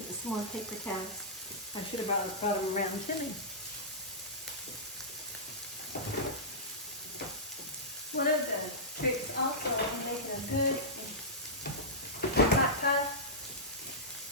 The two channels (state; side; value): normal; both; correlation -0.15